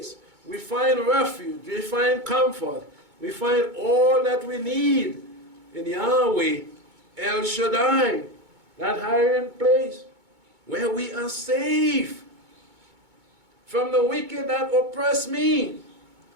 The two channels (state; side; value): late; left; 2.2 ms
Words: We find refuge. We find comfort. We find all that we need in Yahweh, Elshaddi, that hiding place where we are safe from the wicked that oppress me,